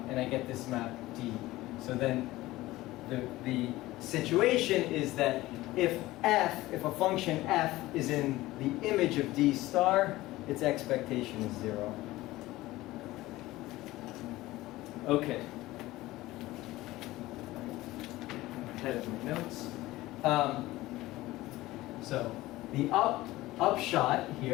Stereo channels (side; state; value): right; quieter; 17.8 dB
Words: I get this map d. So then the situation is that if a function f is in the image of d star, its expectation is 0. Okay. Ahead of my notes. So the upshot